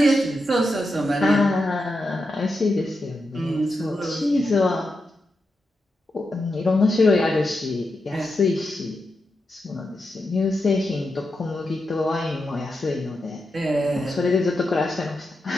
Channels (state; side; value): normal; both; correlation 0.87